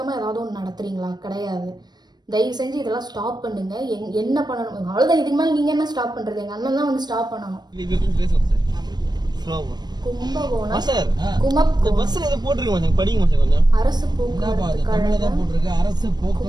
ஏதாவது ஒன்று நடத்துறீங்களா? கிடையாது. தயவு செஞ்சு இதெல்லாம் ஸ்டாப் பண்ணுங்க. என்ன பண்ணணும் அவ்வளோதான். இதுக்கு மேலே நீங்கள் என்ன ஸ்டாப் பண்ணுறது? எங்கள் அண்ணன் தான் வந்து ஸ்டாப் பண்ணணும். கும்பகோணம் அரசு போக்குவரத்து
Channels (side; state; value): left; late; 0.20 ms